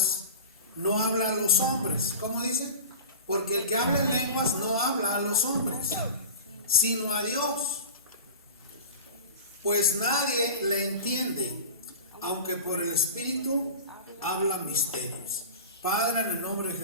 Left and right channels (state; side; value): inverted; both; correlation -0.31